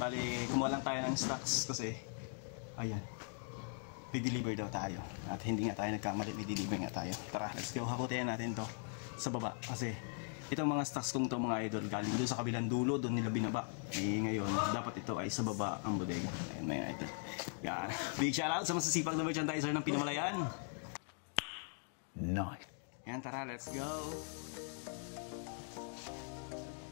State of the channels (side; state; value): right; silent; 51 dB below the other